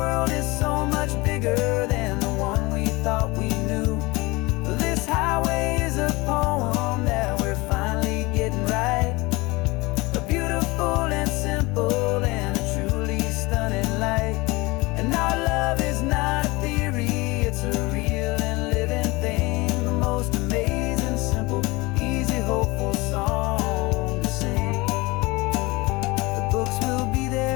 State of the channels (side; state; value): right; quieter; 23.3 dB